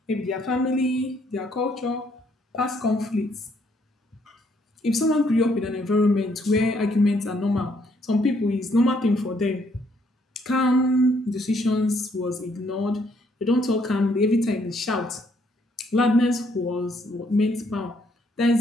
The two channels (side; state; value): both; normal; correlation 0.69